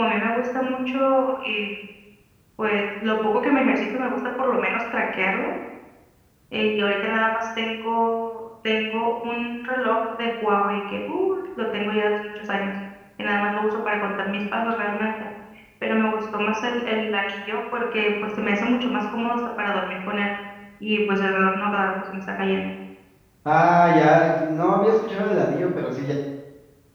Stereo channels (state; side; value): identical; both; correlation 1.00